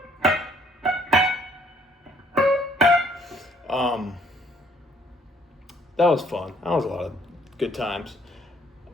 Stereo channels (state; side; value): normal; both; correlation 0.63